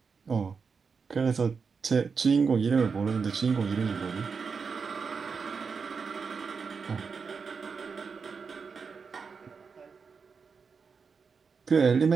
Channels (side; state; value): left; quieter; 5.4 dB